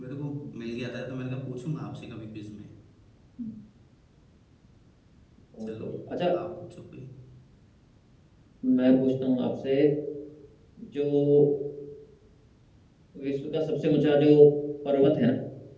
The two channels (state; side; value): identical; both; correlation 1.00